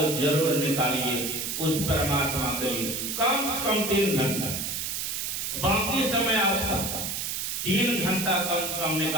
जरूर निकालिए उस परमात्मा के लिए, कम से कम 3 घंटा। बाकी समय आपका 3 घंटा कम से कम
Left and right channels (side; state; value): right; noise; hiss, 2 dB below the sound